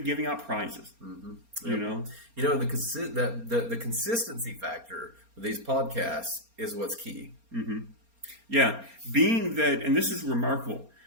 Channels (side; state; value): left; late; 4.3 ms